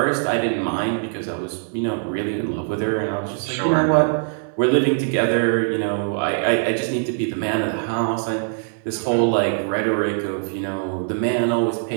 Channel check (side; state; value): left; silent; digital silence